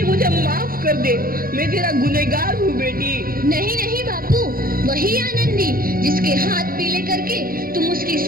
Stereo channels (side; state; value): left; late; 0.42 ms